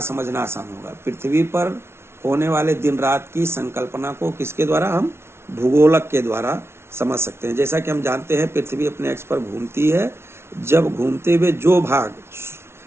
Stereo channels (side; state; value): left; late; 0.12 ms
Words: समझना आसान होगा? पृथ्वी पर होने वाले दिन रात की संकल्पना को किसके द्वारा? हम भूगोलक के द्वारा समझ सकते हैं। जैसा कि हम जानते हैं पृथ्वी अपने अक्ष पर घूमती है। जब घूमते हुए जो भाग